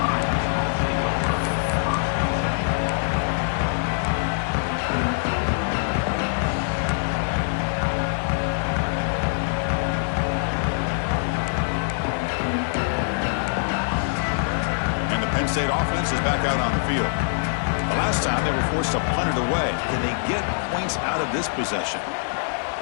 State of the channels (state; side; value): silent; right; digital silence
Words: And the Penn State offense is back out on the field. The last time they were forced to punt it away. Can they get points out of this possession?